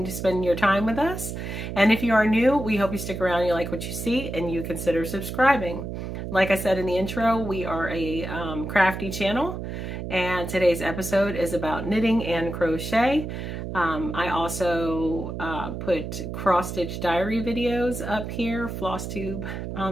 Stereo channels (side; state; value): right; noise; hum, 6 dB below the sound